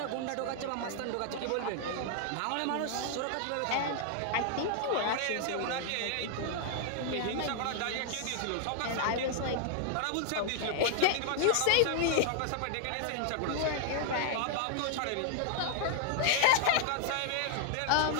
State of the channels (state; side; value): different; both; correlation 0.00